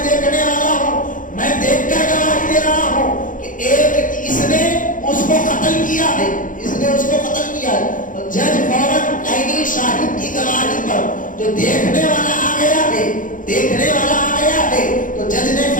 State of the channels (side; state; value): right; late; 0.38 ms